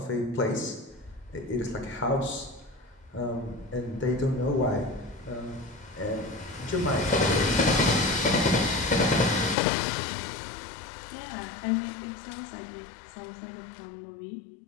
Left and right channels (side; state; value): right; drops out; at 9.6 s